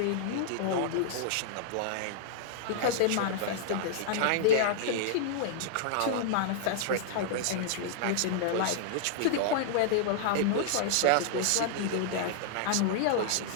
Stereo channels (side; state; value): both; different; correlation -0.01